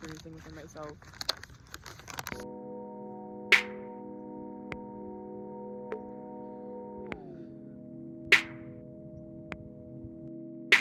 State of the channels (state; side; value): identical; both; correlation 1.00